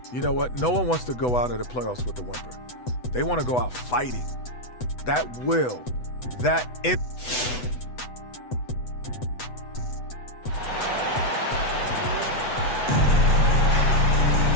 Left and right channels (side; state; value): right; late; 8.1 ms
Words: You know what? No one wants to go out of the playoffs with a whimper. They want to go out fighting. That will, that it.